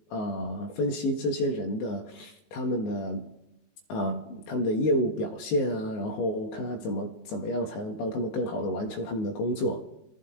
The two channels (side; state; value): right; late; 19 ms